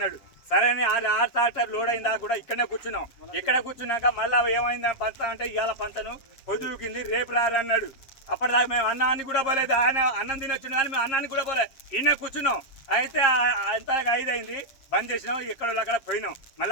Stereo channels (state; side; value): late; right; 7.5 ms